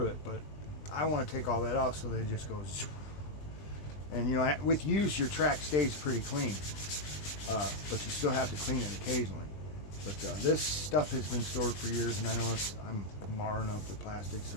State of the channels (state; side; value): late; right; 20 ms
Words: it, but I want to take all that off so they just go. And you know, with use, your track stays pretty clean, but you still have to clean it occasionally. But this stuff has been stored for years, and I know I'm marring up the plastic